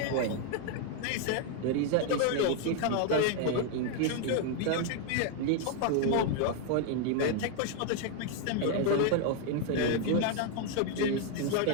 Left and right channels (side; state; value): both; different; correlation 0.01